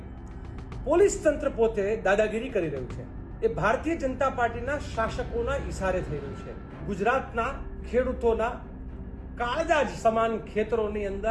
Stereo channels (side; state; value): both; identical; correlation 1.00